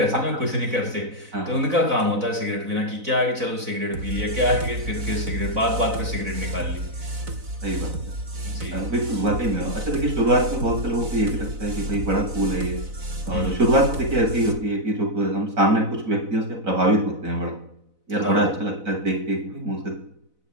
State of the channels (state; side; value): late; left; 4.0 ms